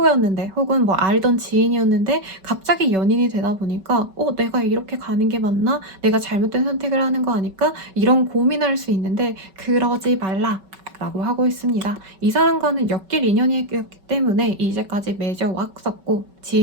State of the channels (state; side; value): late; left; 5.3 ms